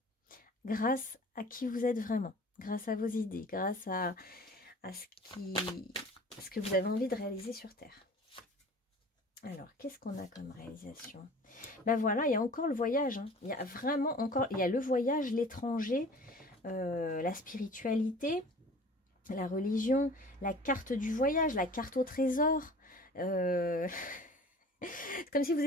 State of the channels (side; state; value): both; normal; correlation 0.44